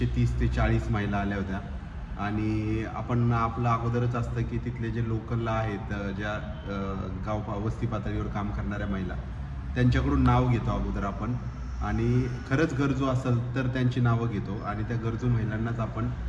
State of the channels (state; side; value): identical; both; correlation 1.00